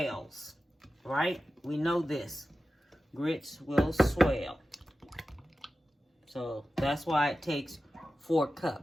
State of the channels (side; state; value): both; normal; correlation 0.94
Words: right? We know this. Grits will swell. So that's why it takes 4